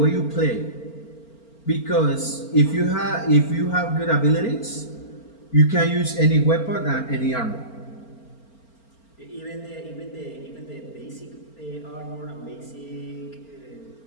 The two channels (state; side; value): late; right; 4.4 ms